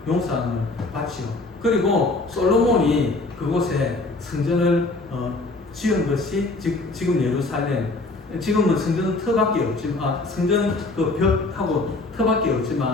용서함을 받지요. 그리고 솔로몬이 그곳에 성전을 지은 것이 지금 예루살렘, 지금은 성전 터밖에 없지만 성전 그 벽하고 터밖에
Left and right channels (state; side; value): quieter; right; 3.2 dB